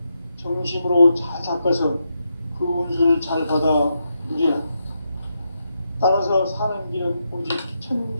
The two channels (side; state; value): both; inverted; correlation -0.84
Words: 정심으로 잘 닦아서 그 운수를 잘 받아 누리라. 따라서 사는 길은 오직